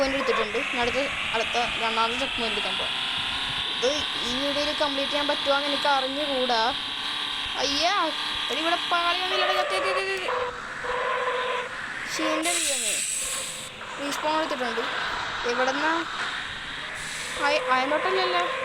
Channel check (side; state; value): both; identical; correlation 1.00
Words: എടുത്തിട്ടുണ്ട്. അടുത്ത രണ്ടാമത്തെ ചെക്ക് പോയിന്റ് എടുക്കാൻ പോകാം. ഇത് ഈ വീഡിയോയിൽ കംപ്ലീറ്റ് ചെയ്യാൻ പറ്റുമോ എന്ന് എനിക്ക് അറിഞ്ഞുകൂടാ. അയ്യാ, ഇവിടെ പാളി വന്നില്ല. ഷീൻ്റെ റീസ്പോൺ എടുത്തിട്ടുണ്ട്. എവിടെ നിന്നാ? അയന്തോട്ടല്ലല്ലോ.